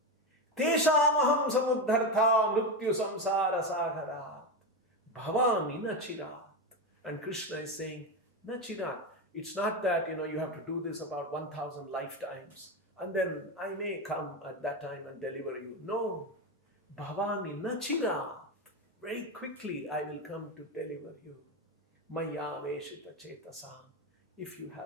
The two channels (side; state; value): both; normal; correlation 0.15